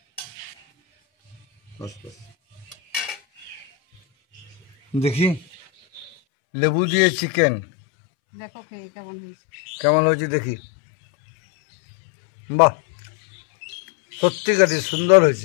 বাস বাস। দেখি লেবু দিয়ে চিকেন দেখো খেয়ে কেমন হয়েছে। কেমন হয়েছে দেখি। বাহ, সত্যিকারই সুন্দর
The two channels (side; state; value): right; drops out; at 6.2 s